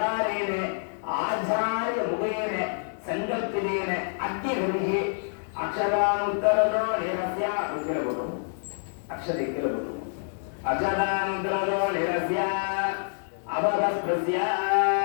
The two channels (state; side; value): silent; right; digital silence